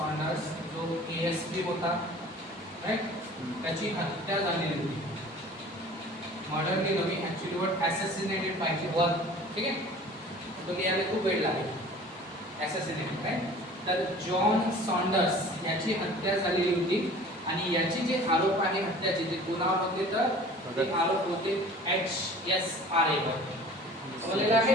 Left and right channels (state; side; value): normal; both; correlation 0.45